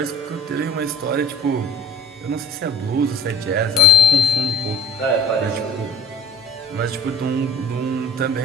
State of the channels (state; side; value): normal; both; correlation 0.47